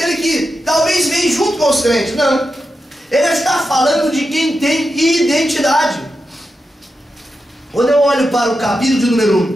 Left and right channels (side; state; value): both; normal; correlation 0.89